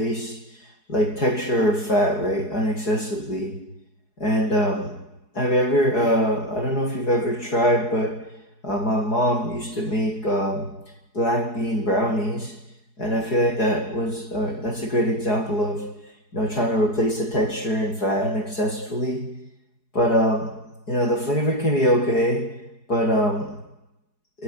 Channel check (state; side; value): late; right; 4.7 ms